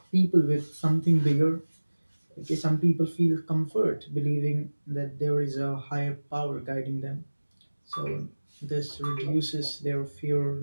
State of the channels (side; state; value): both; inverted; correlation -1.00